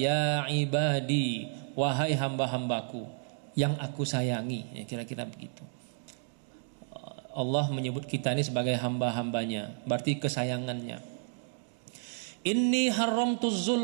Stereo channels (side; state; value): left; silent; digital silence